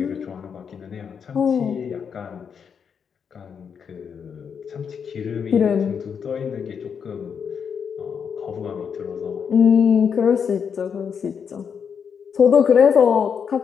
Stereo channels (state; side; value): quieter; right; 6.9 dB